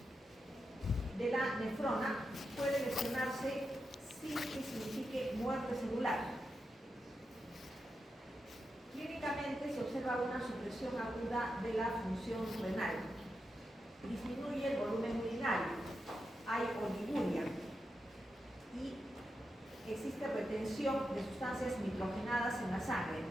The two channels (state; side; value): normal; both; correlation 0.87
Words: de la nefrona puede lesionarse sin que signifique muerte celular. Clínicamente se observa una supresión aguda de la función renal. Disminuye el volumen urinario, hay oliguria y existe retención de sustancias nitrogenadas en la sangre.